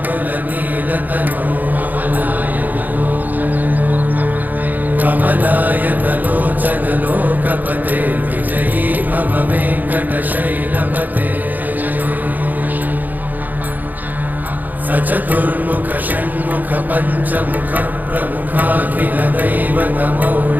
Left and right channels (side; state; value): left; late; 0.084 ms